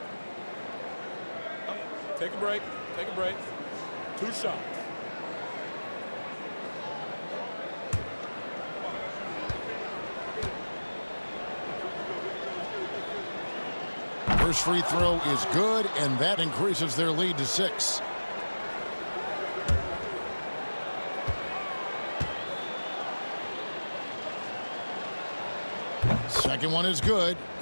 Take a break. Take a break. 2 shots. First free throw is good, and that increases their lead to 6. Second one is good,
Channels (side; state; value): both; inverted; correlation -1.00